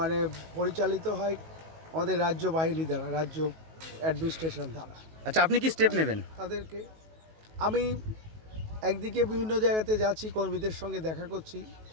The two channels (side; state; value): left; late; 19 ms